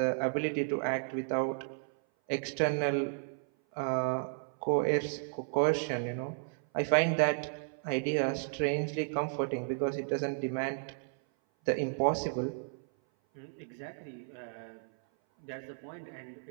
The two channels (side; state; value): left; silent; 55 dB below the other